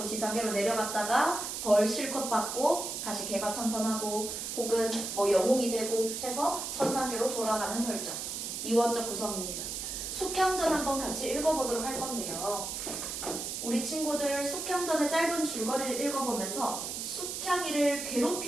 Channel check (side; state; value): right; noise; hiss, 5 dB below the sound